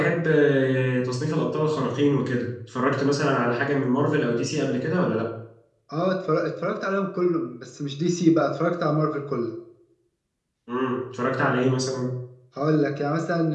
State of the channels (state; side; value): identical; both; correlation 1.00